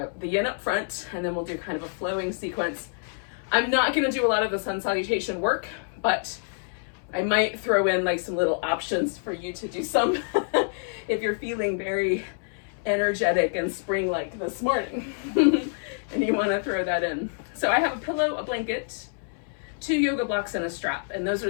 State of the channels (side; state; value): right; silent; 60 dB below the other